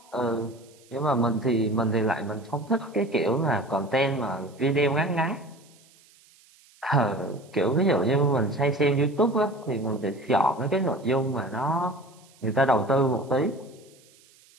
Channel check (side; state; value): right; noise; hiss, 28 dB below the sound